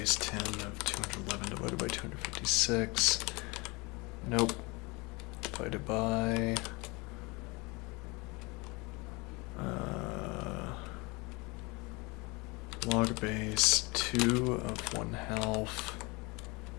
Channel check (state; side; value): quieter; right; 26.4 dB